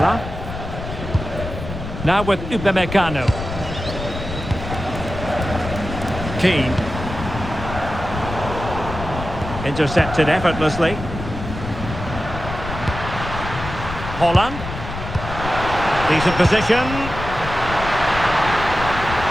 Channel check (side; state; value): left; noise; rumble, 8 dB below the sound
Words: Now with Upamecano. Keane. Intercepted effortlessly. Holland. Decent position.